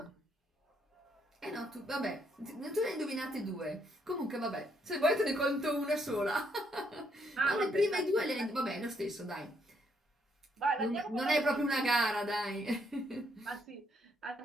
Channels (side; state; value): both; normal; correlation 0.73